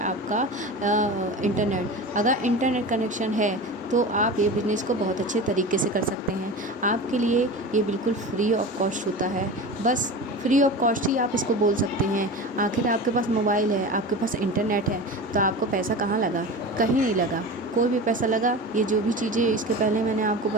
आपका इंटरनेट। अगर इंटरनेट कनेक्शन है तो आप ये बिज़नेस को बहुत अच्छे तरीके से कर सकते हैं। आपके लिए ये बिल्कुल फ्री ऑफ कॉस्ट होता है, बस फ्री ऑफ कॉस्ट ही आप इसको बोल सकते हैं। आखिर आपके पास मोबाइल है, आपके पास इंटरनेट है, तो आपको पैसा कहाँ लगा? कहीं नहीं लगा, कोई भी पैसा लगा। ये जो भी चीज़ें इसके पहले मैंने आपको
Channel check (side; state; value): both; normal; correlation 0.31